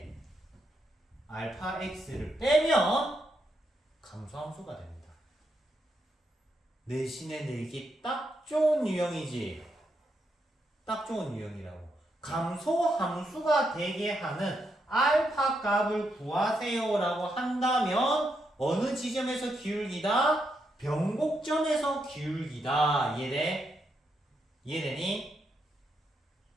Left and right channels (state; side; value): normal; both; correlation 0.81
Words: 알파 x를 빼면 감소함수가 됩니다. 내신에 내기 딱 좋은 유형이지. 딱 좋은 유형이라고. 감소함수가 되게 하는 알파 값을 구하세요 라고 한다면 어느 지점에서 기울기다? 변곡점에서 기울기다. 이해돼? 이해되니?